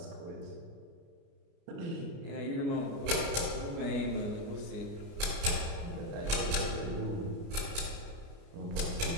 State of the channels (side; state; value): left; late; 29 ms